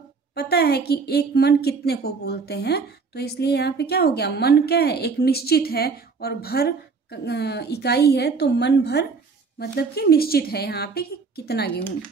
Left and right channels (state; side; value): quieter; left; 4.8 dB